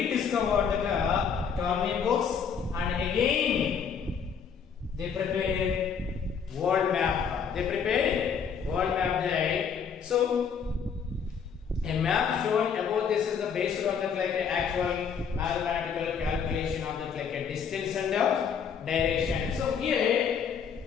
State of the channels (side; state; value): right; quieter; 6.8 dB